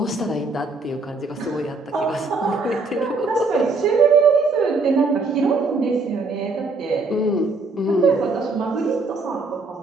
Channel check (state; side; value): quieter; left; 3.7 dB